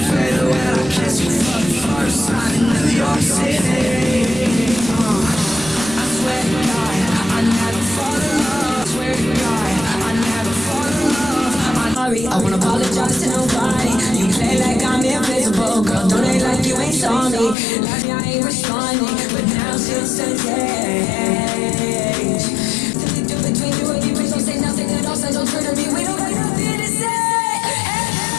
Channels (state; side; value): drops out; right; at 17.6 s